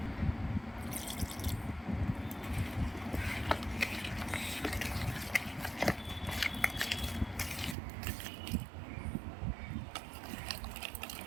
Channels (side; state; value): left; drops out; at 7.8 s